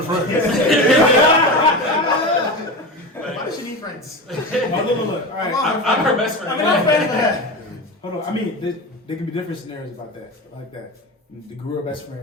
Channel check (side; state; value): both; normal; correlation 0.25